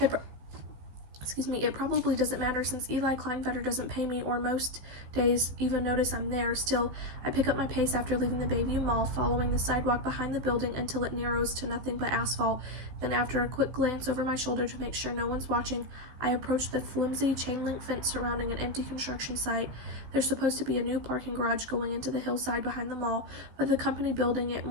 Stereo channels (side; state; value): left; late; 16 ms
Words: probably doesn't matter since Eli Kleinfetter doesn't pay me or most days even notice I'm there. Still, I pick up my pace after leaving the Bayview Mall, following the sidewalk behind the building until it narrows to nothing but asphalt. Then after a quick glance over my shoulder to make sure no one's watching, I approach the flimsy chain-link fence surrounding an empty construction site. There's supposed to be a new parking garage going into the hillside behind the mall, but the company building it